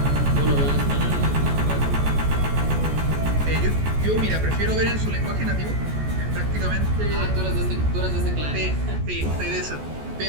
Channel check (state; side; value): late; left; 14 ms